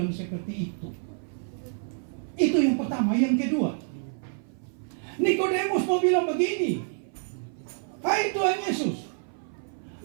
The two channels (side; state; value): left; silent; 57 dB below the other